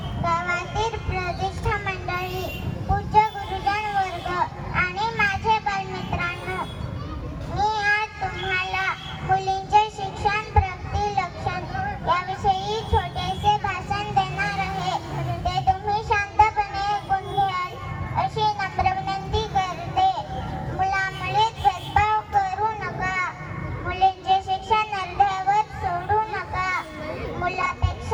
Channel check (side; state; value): both; identical; correlation 1.00